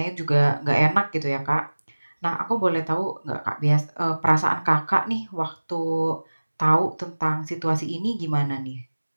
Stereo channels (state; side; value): inverted; both; correlation -1.00